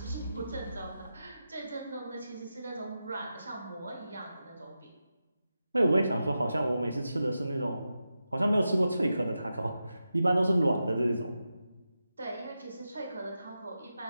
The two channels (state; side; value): inverted; both; correlation -0.90